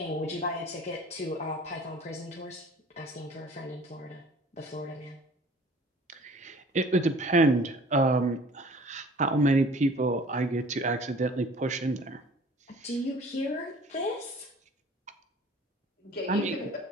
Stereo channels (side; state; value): both; normal; correlation 0.49